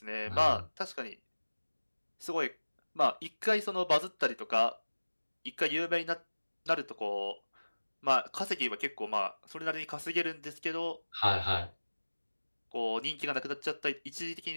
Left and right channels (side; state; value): both; inverted; correlation -1.00